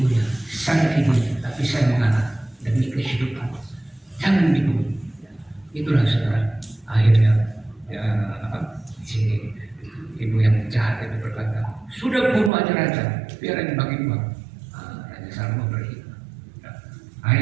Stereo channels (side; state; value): left; drops out; at 12.5 s